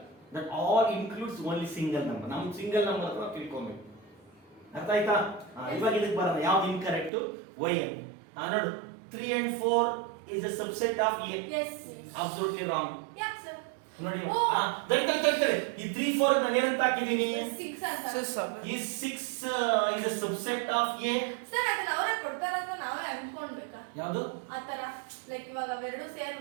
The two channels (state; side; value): drops out; left; at 7.1 s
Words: that all includes only single number. ನಾವು ಸಿಂಗಲ್ ನಂಬರ್ ಅಂತ ತಿಳ್ಕೊಬೇಕು. ಅರ್ಥ ಆಯ್ತಾ? ಇವಾಗ ಇದಕ್ಕೆ ಬರೋಣ, ಯಾವ್ದು ಇನ್ಕರೆಕ್ಟ್? yn. ನೋಡು 3 and 4 is a subset of a. yes Absolutely wrong. ಯಾಕೆ ಸರ್? ನೋಡಿ ದಡ್ಡ ಈ 3 4 ನಾನು ಏನಂತ ಹಾಕಿದೀನಿ? 6 ಅಂತ. ಈ 6 is a subset of a. Sir ಅದನ್ನ ಅವರೇ ಕೊಡ್ತಾರ ಅಂತ ನಾವೇ ಅನ್ಕೊಂಡ್ಬೇಕಾ? ಯಾವುದು ಆತರ ಲೈಕ್ ಇವಾಗ ಅವೆರಡು ಸೇರಿ